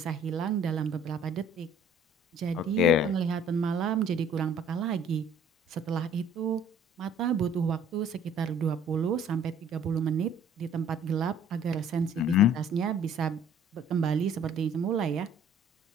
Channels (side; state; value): both; normal; correlation 0.54